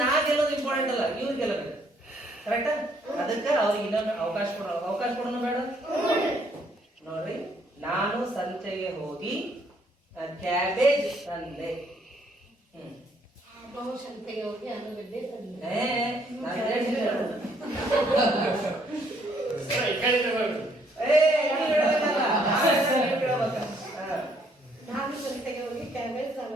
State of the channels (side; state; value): both; normal; correlation 0.67